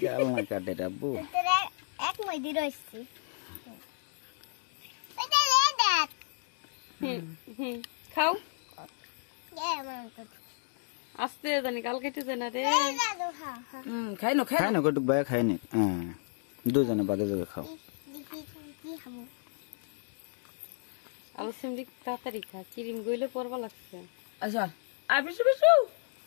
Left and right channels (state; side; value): silent; right; digital silence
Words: গাল না কাটে রাব্বু এক মইদি রইছি খাও মাম তো আস্তে জানি কাল কেটে যায় না রে। খাই না কটুক ভাই খাই নি, দুজনে বাদে বাদে খাও। আলু সিমড়ি তাড়াতাড়ি খা, ক্রিম গইলে পড়বা লাগছে। আচ্ছা আর বিশু বিশু